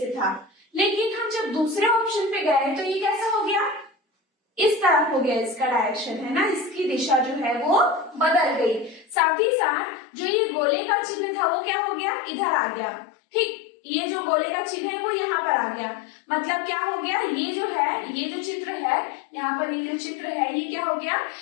था। लेकिन हम जब दूसरे ऑप्शन पे गए तो ये कैसा हो गया, इस तरफ हो गया, इसका डायरेक्शन है ना, इसकी दिशा जो है वो बदल गई। साथ ही साथ जो ये गोले का चिन्ह था वो क्या हो गया, इधर आ गया। ठीक, ये जो गोले का चिन्ह है वो यहाँ पर आ गया, मतलब क्या हो गया, ये जो है, ये जो चित्र है यहाँ पर, ये जो चित्र है ये क्या हो गया,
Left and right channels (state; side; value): drops out; right; at 9.2 s